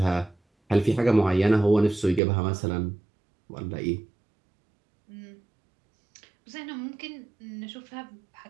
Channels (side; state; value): left; drops out; at 2.2 s